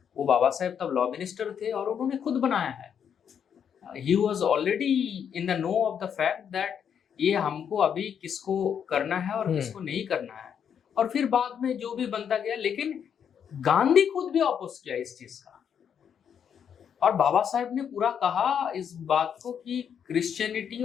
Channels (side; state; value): right; quieter; 8.0 dB